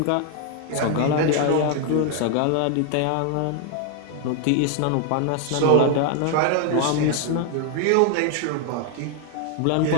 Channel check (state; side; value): different; both; correlation 0.00